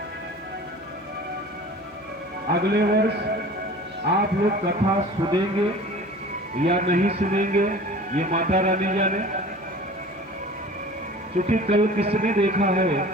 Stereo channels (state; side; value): normal; both; correlation 0.42